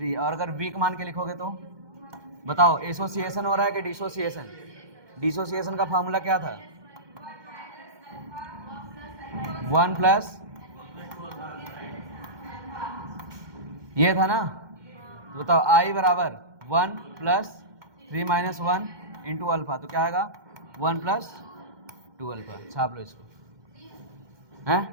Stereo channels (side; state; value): left; late; 2.1 ms